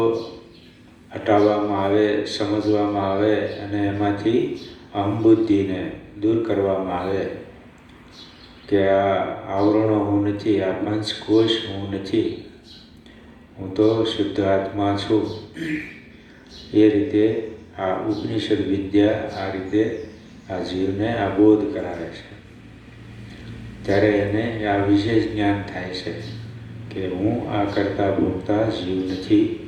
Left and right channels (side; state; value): both; identical; correlation 1.00